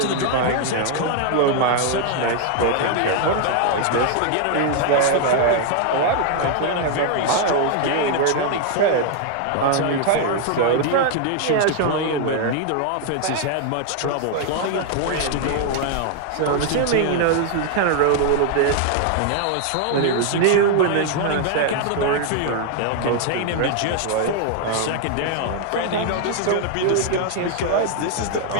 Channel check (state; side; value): different; both; correlation 0.00